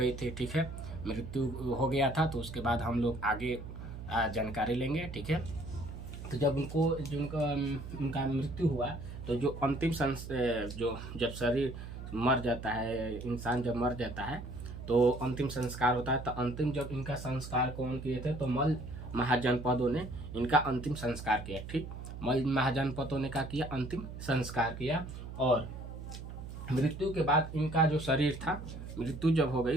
थी। ठीक है, मृत्यु हो गया था, तो उसके बाद हम लोग आगे जानकारी लेंगे। ठीक है, तो जब उनका मृत्यु हुआ, तो जो अंतिम जो जब शरीर मर जाता है, इंसान जब मर जाता है तो अंतिम संस्कार होता है। तो अंतिम जब इनका संस्कार कौन किए थे, तो मल्ल महाजनपदों ने इनका अंतिम संस्कार किया। ठीक, मल्ल महाजनपदों ने क्या किया, अंतिम संस्कार किया। और मृत्यु के बाद इनका जो शरीर था, मृत्यु जब हो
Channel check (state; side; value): noise; right; hum, 10 dB below the sound